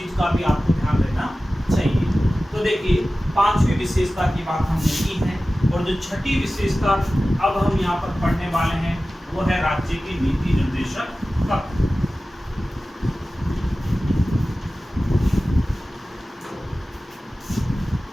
का भी आपको ध्यान देना चाहिए। तो देखिए 5वीं विशेषता की बात हमने की है और जो 6ठी विशेषता अब हम यहाँ पर पढ़ने वाले हैं वो है राज्य की नीति निर्देशक तत्व।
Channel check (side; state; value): both; normal; correlation 0.96